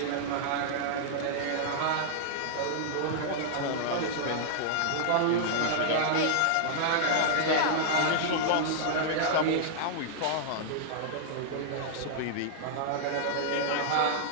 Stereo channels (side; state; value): both; different; correlation -0.01